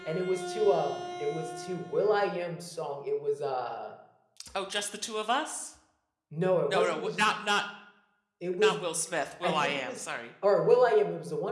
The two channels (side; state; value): both; identical; correlation 1.00